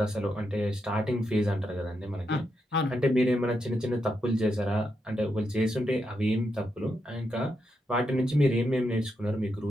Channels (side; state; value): both; normal; correlation 0.83